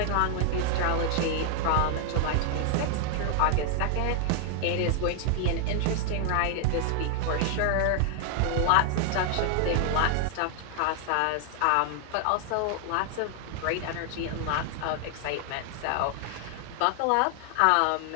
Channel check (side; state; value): both; different; correlation 0.00